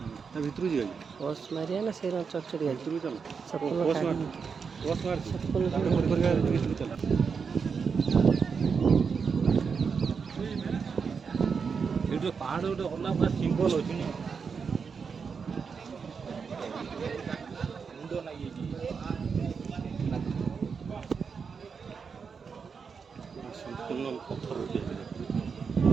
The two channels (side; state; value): left; quieter; 5.8 dB